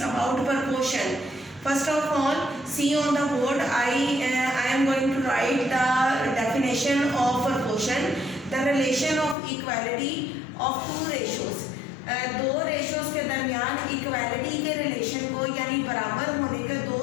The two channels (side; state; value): right; drops out; at 9.3 s